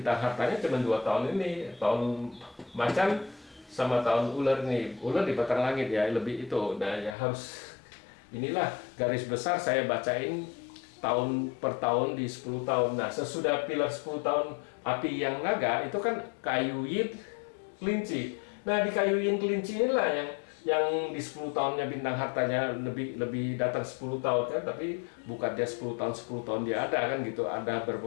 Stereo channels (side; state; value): right; drops out; at 7.2 s